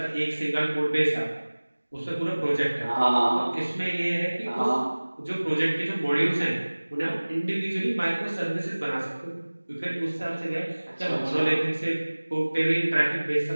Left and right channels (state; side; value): inverted; both; correlation -1.00